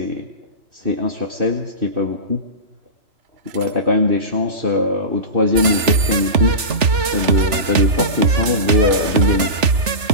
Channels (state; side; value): late; left; 3.4 ms